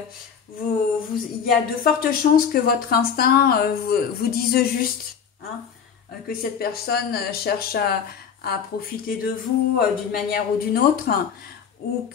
il y a de fortes chances que votre instinct vous dise juste, hein, que cette personne cherche à profiter de vous d'une manière ou d'une autre, ou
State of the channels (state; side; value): quieter; right; 7.2 dB